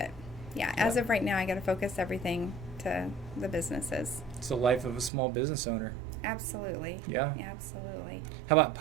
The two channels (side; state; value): left; drops out; at 5.1 s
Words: as of right now, I got to focus everything to the businesses. It's the life of a small business owner. Absolutely. Yeah. Absolutely. How about